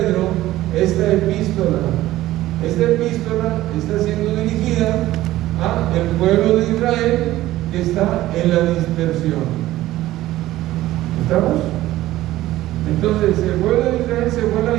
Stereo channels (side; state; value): left; quieter; 15.6 dB